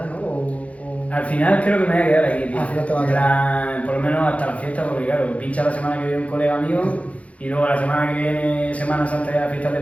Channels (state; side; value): late; right; 0.065 ms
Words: ¿no? Al final creo que me voy a quedar aquí, tío. Al final te vas a En quedar. plan, por lo menos hasta la fiesta, porque claro, pincha la semana que viene un colega mío y luego la semana que viene, Semana Santa y las fiestas de